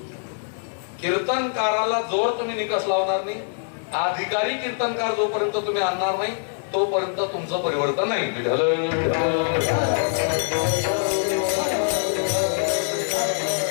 कीर्तनकाराला जोर तुम्ही निकष लावणार नाही, अधिकारी कीर्तनकार जोपर्यंत तुम्ही आणणार नाही तोपर्यंत तुमचं परिवर्तन नाही. विठ्ठल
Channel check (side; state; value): right; silent; digital silence